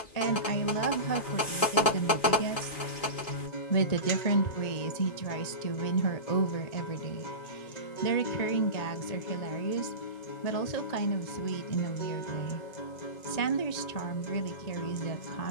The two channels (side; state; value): right; late; 2.4 ms